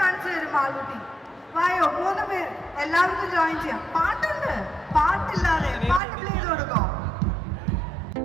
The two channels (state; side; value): drops out; left; at 6.0 s